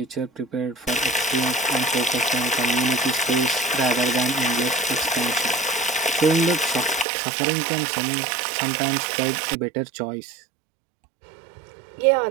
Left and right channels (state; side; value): drops out; left; at 7.1 s